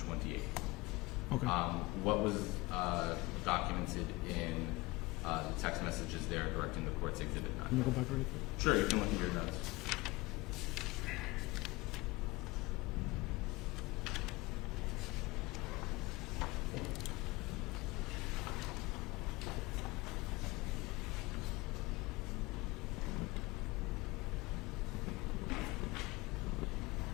Okay. What was documented in the text messages there directing the court's Exhibit 9? Can you go back really quick? Sure, you can look at your notes.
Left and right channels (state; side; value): quieter; right; 22.5 dB